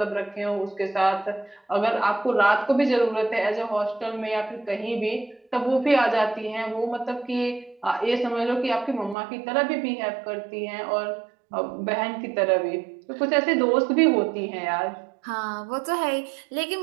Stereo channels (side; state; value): left; drops out; at 9.2 s